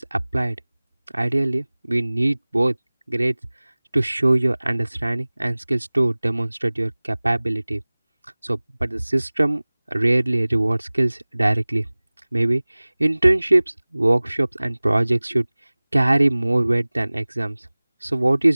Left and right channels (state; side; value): inverted; both; correlation -1.00